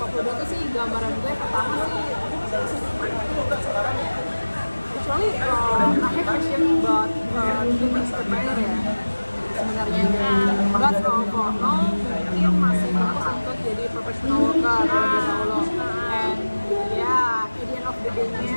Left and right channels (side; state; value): both; inverted; correlation -1.00